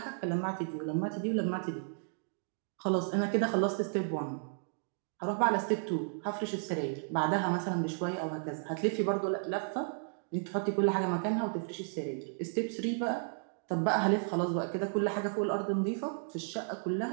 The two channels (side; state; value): left; silent; digital silence